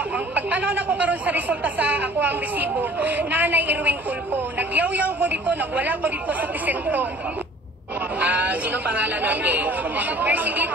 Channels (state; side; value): normal; both; correlation 0.50